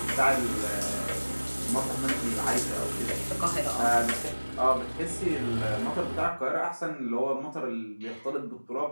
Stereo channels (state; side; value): inverted; both; correlation -1.00